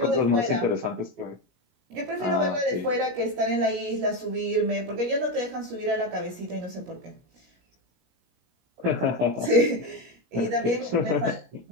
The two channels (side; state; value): left; late; 17 ms